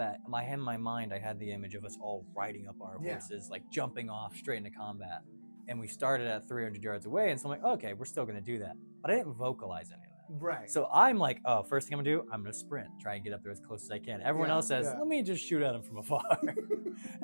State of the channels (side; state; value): both; inverted; correlation -1.00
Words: in my mind, I had the image of us all riding up our horses, like jumping off straight into combat. And we started at 300 yards away, and so I'm like, okay, we're still gonna do that. But I didn't vocalize any of that. Right. So I'm like, oh, first thing I'm gonna do, I'm gonna sprint, try and get up there as close as I can. Everyone else says, let me just shoot at him from afar. And